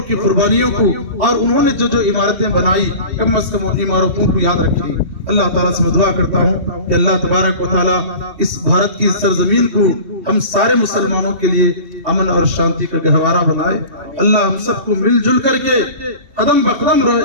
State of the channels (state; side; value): late; left; 2.7 ms